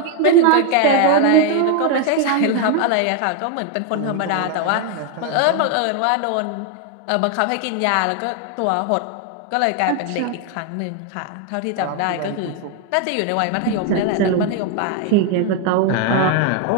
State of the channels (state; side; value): different; both; correlation 0.01